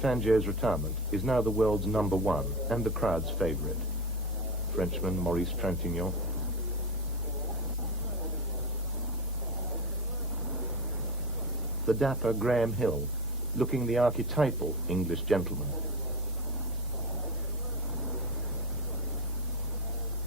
retirement is now the world's #1 and the crowd's favourite. Frenchman Maurice Trintignant. The dapper Graham Hill, looking the archetypal English gentleman.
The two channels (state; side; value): normal; both; correlation 0.22